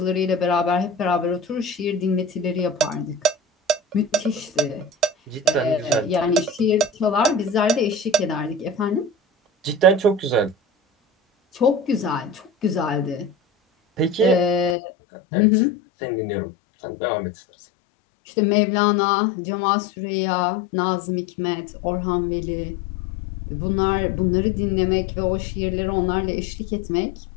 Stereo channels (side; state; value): right; drops out; at 14.8 s